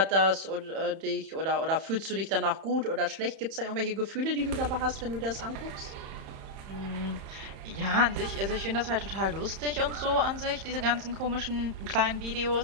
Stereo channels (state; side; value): late; left; 31 ms